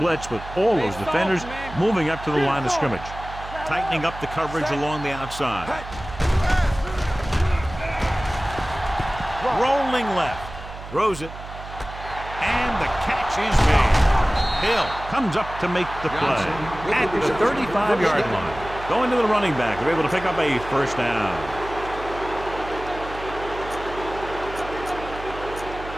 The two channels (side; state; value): right; noise; hum, 13 dB below the sound